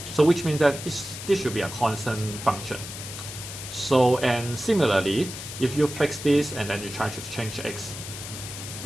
So which means that this should be a constant function. So, and similarly, if you fix this and then you try to change x,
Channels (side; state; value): left; noise; hiss, 10 dB below the sound